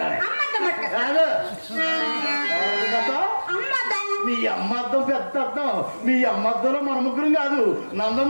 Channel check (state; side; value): inverted; both; correlation -1.00